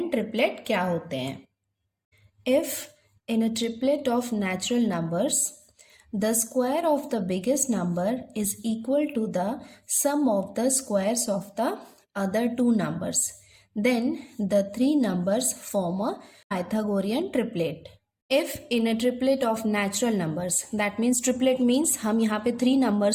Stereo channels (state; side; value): identical; both; correlation 1.00